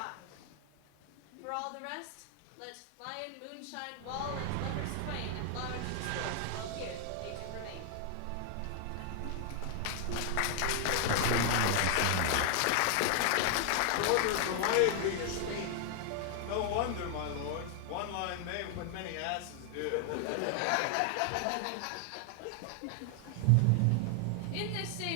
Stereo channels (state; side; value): different; both; correlation 0.00